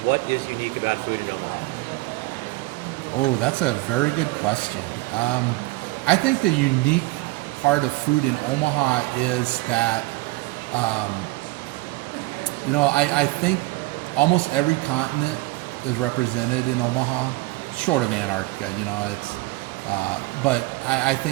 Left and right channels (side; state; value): left; quieter; 21.1 dB